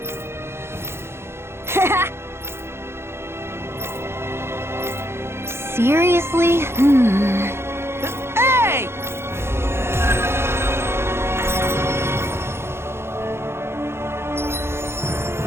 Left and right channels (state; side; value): late; left; 0.12 ms